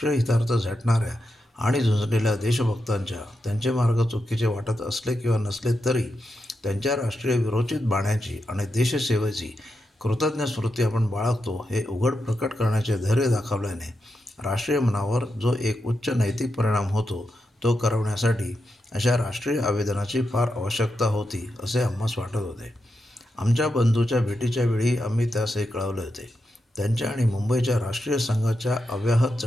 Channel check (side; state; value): both; normal; correlation 0.86